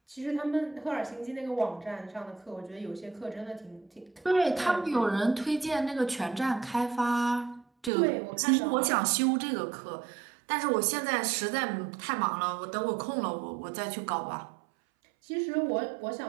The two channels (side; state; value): left; drops out; at 7.9 s